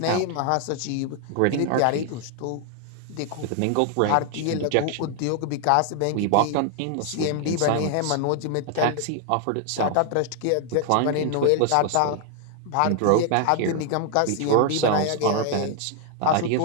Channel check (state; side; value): different; both; correlation 0.00